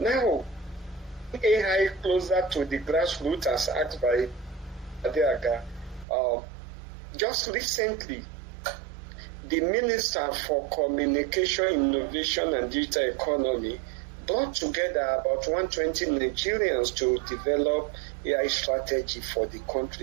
AI closer to the grassroots, as asked by Adeaga. Just recently, the Minister for Communication, Innovation and Digital Economy brought together about 120 Nigerians to develop AI strategy for the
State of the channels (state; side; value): drops out; left; at 6.1 s